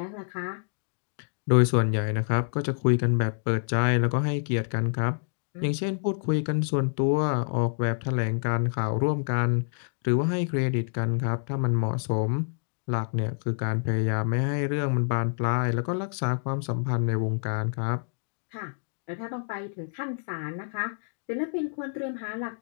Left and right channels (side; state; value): right; silent; digital silence